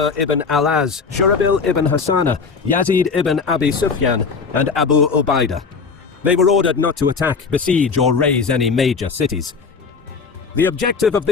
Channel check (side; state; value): right; quieter; 5.2 dB